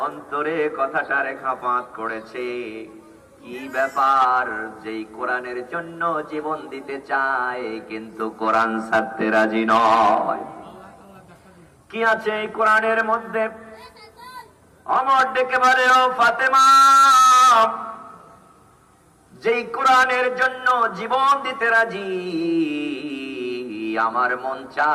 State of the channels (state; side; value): identical; both; correlation 1.00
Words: অন্তরে কথাটা রেখাপাত করেছে, কি ব্যাপার, যেই কোরআনের জন্য জীবন দিতে চায় কিন্তু কোরআন ছাড়তে রাজি নয়, কি আছে এই কোরআনের মধ্যে? ওমর ডেকে বলে, ও ফাতেমা, যেই কোরআনের জন্য জীবন দিতে রাজি, আমার মন